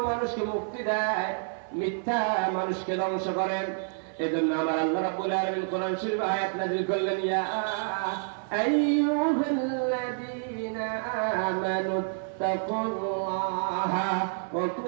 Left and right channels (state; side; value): silent; left; 55 dB below the other